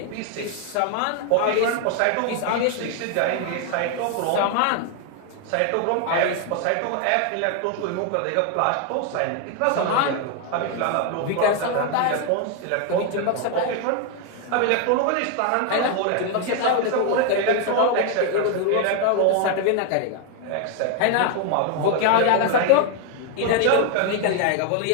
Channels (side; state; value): both; different; correlation 0.01